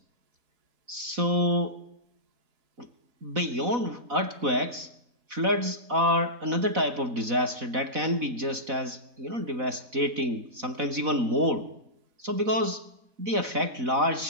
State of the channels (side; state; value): left; late; 4.0 ms